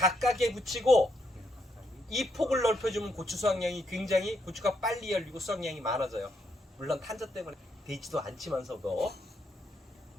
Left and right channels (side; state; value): both; normal; correlation 0.77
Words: 붙이고 이 폭을 넓혀주면 고추 수확량이 굉장히 고추가 빨리 열리고 수확량이 많아져요. 물론 탄저 때문에 되지도 않지만서도.